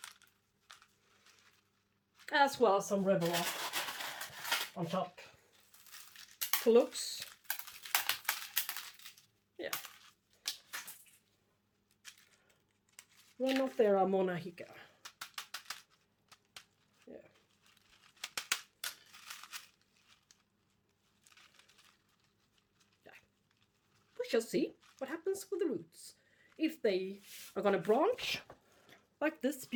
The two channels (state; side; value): identical; both; correlation 1.00